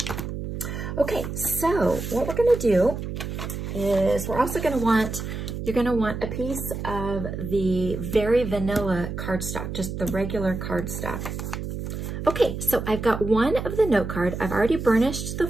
Okay, so what we're going to do is we're also going to want, you're going to want a piece of the very vanilla cardstock, just the regular cardstock. Okay, so I've got one of the note card. I've already burnished the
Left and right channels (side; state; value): right; noise; hum, 6 dB below the sound